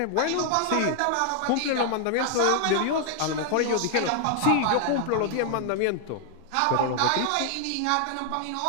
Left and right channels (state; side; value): different; both; correlation 0.00